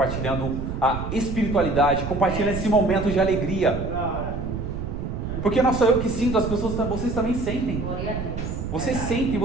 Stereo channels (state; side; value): noise; right; rumble, 5 dB below the sound